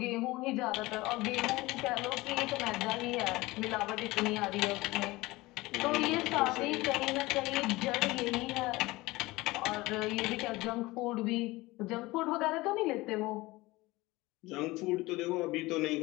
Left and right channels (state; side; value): quieter; right; 20.6 dB